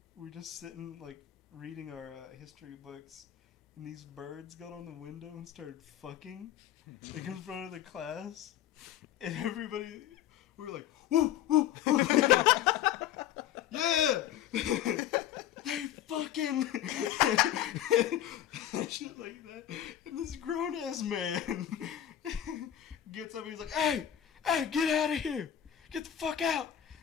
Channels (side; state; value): right; quieter; 11.2 dB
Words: we're just sitting, like, reading our history books. And these birds got on the window and started fucking, like, in front of the class. And everybody, we were like, woo, woo, woo. Yeah! They fucking shit like that. And this grown ass man gets up and he's like, hey, get out of here. Get the fuck out.